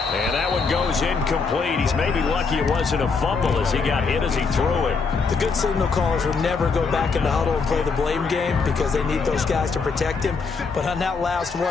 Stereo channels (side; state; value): right; quieter; 4.8 dB